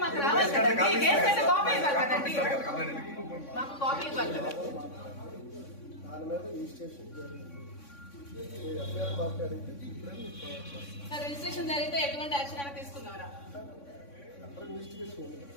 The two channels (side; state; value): right; late; 3.6 ms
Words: మాకు రావాలి కదండి. కేసు అయితే కాపీ ఇవ్వాలి కదండి, మాకు కాపీ ఇవ్వాలి కదా. రిజిస్ట్రేషన్ జరిగితే ఎటువంటి యాక్షన్ అయినా తీసుకున్నారా?